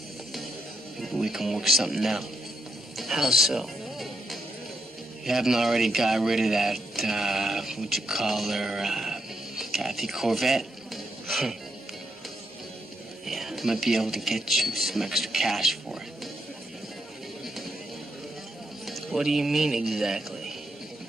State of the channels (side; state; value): both; normal; correlation 0.80